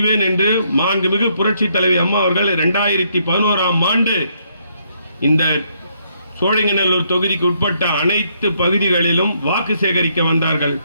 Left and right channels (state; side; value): inverted; both; correlation -0.73